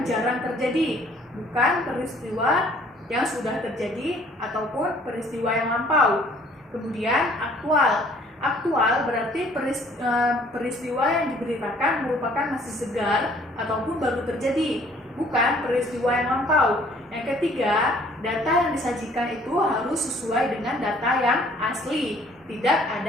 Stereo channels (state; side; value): normal; both; correlation 0.58